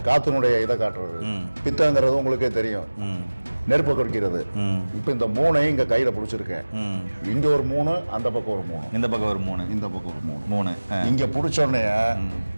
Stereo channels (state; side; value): inverted; both; correlation -1.00